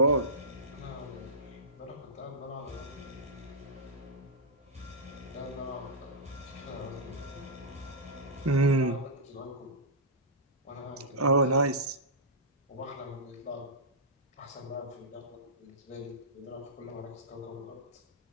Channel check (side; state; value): both; normal; correlation -0.15